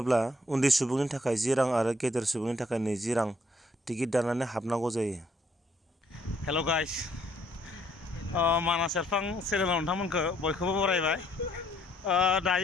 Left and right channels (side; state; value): both; normal; correlation 0.67